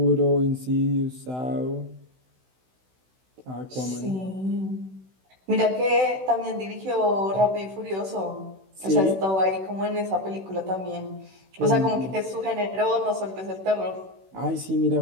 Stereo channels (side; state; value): left; late; 16 ms